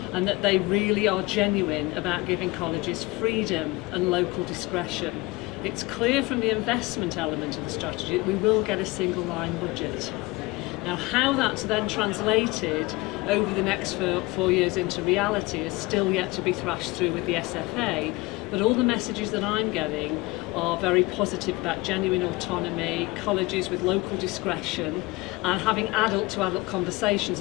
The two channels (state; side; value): quieter; right; 22.4 dB